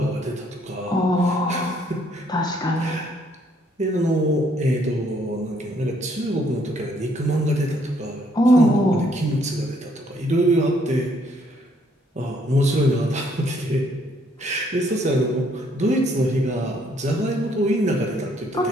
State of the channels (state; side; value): normal; both; correlation 0.67